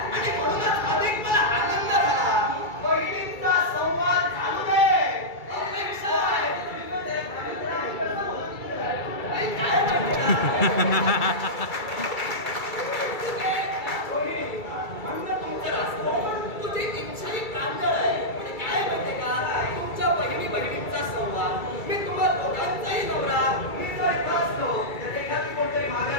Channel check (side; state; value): right; late; 2.3 ms